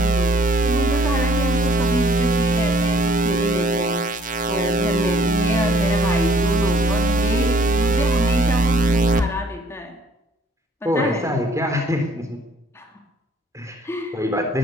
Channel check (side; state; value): both; normal; correlation 0.59